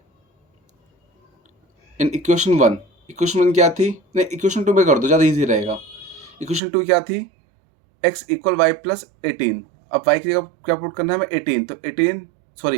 in equation 1, equation 1 क्या थी, नहीं इक्वेशन 2 में कर दो, ज़्यादा इजी रहेगा। इक्वेशन 2 क्या थी, x इक्वल वाई प्लस 18। अब y की जगह क्या पुट करना है हमें, 18, तो 18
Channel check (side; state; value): left; drops out; at 6.6 s